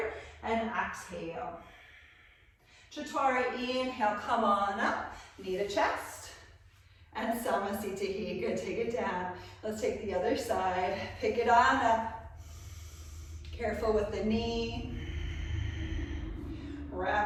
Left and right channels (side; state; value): both; identical; correlation 1.00